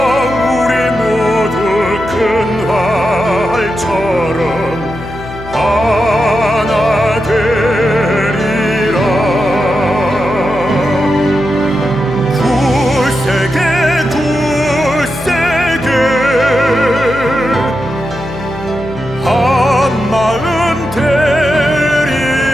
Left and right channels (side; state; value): left; noise; hum, 13 dB below the sound